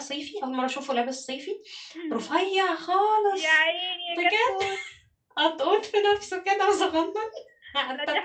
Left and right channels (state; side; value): identical; both; correlation 1.00